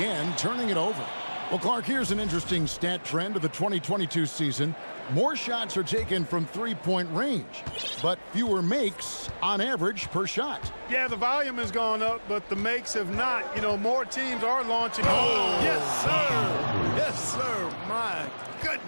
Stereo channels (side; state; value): both; inverted; correlation -1.00